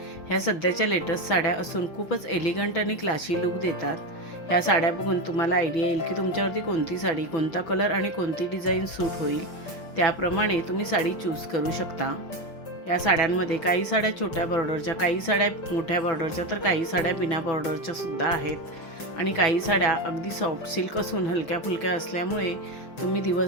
ह्या सध्याच्या लेटेस्ट साड्या असून खूपच एलिगंट आणि क्लासी लुक देतात. ह्या साड्या बघून तुम्हाला आयडिया येईल की तुमच्यावरती कोणती साडी, कोणता कलर आणि कोणती डिझाईन सूट होईल. त्याप्रमाणे तुम्ही साडी चूज करू शकता. या साड्यांमध्ये काही साड्या छोट्या बॉर्डरच्या, काही साड्या मोठ्या बॉर्डरच्या, तर काही साड्या बिना बॉर्डरच्या सुद्धा आहेत. आणि काही साड्या अगदी सॉफ्ट सिल्क असून हलक्या फुलक्या असल्यामुळे तुम्ही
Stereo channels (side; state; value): right; late; 6.1 ms